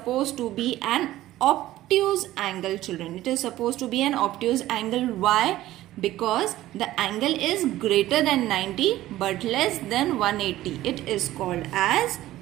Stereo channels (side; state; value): left; quieter; 15.1 dB